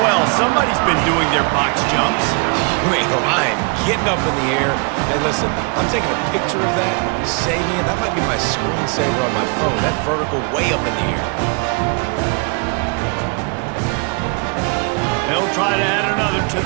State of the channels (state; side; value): quieter; left; 34.4 dB